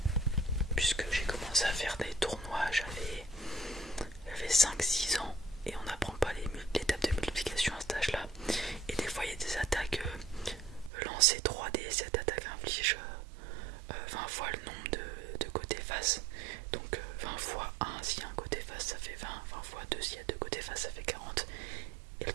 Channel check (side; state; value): left; drops out; at 10.9 s